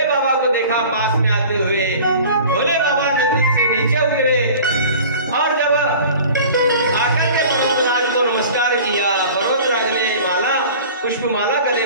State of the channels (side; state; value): both; inverted; correlation -0.42